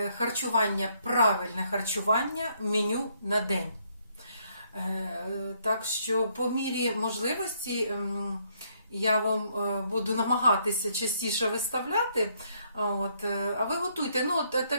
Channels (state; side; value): inverted; both; correlation -0.70